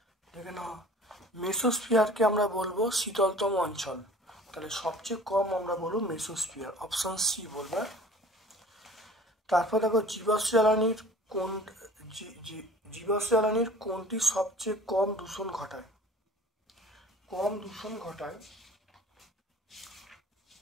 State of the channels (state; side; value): normal; both; correlation 0.47